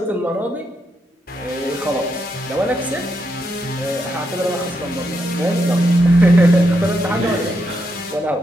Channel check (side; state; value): both; normal; correlation 0.81